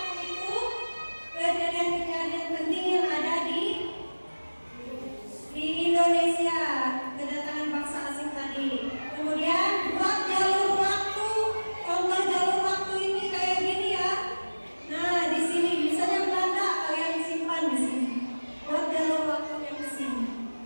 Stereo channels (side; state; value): both; inverted; correlation -1.00